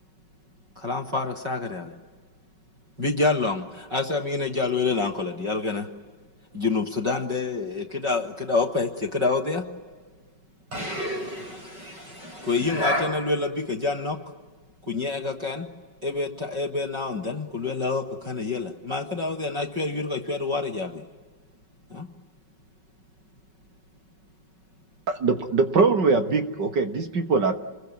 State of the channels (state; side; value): late; left; 5.3 ms